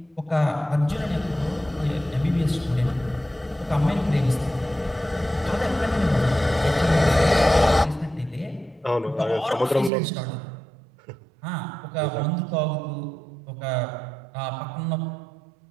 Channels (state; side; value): drops out; left; at 9.9 s